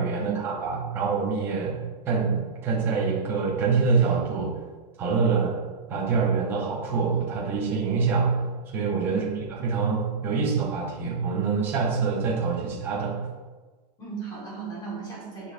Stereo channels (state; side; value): quieter; left; 4.8 dB